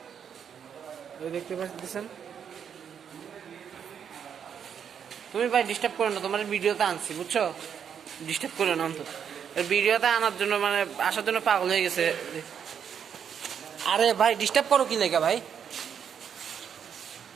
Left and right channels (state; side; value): quieter; left; 7.9 dB